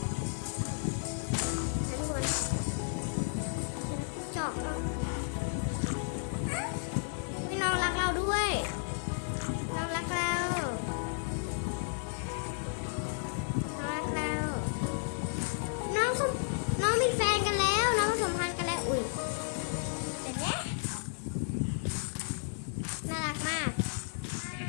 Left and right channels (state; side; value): silent; right; 56 dB below the other